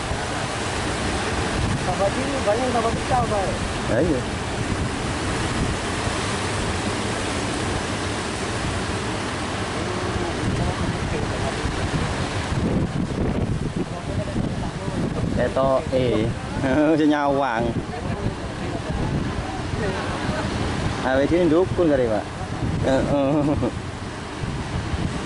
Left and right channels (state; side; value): identical; both; correlation 1.00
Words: Dapat ini banyak dapat pecah, Pak. Ya iya. Eto senyawang. Awet sini dukun kali Pak.